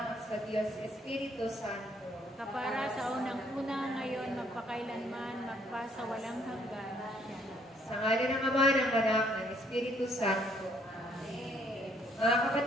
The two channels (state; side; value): normal; both; correlation 0.66